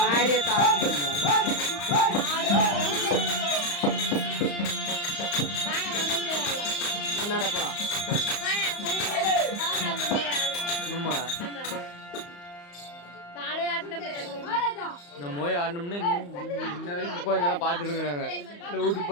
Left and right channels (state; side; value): late; right; 35 ms